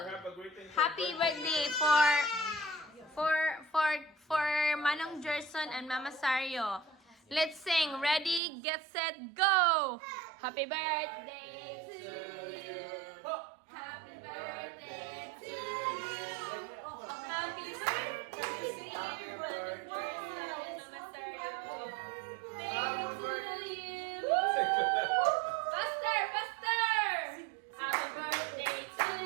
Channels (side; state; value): left; drops out; at 8.4 s